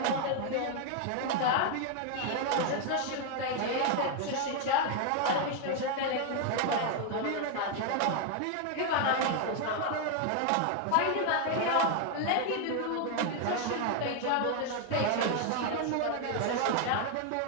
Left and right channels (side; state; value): both; different; correlation 0.01